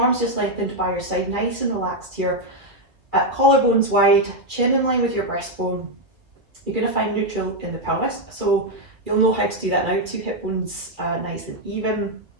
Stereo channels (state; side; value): late; left; 2.2 ms